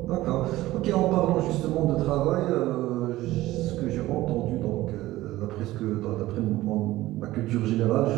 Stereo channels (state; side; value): quieter; left; 16.7 dB